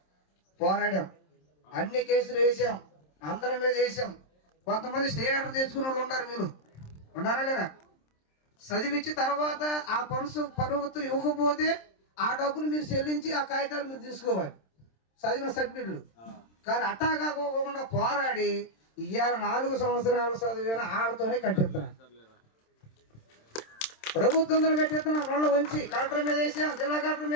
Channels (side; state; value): right; late; 27 ms